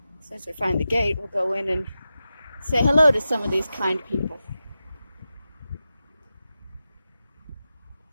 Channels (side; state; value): both; inverted; correlation -0.93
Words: as soon as we find the gate, we'll go in and say hello to some of these kind people.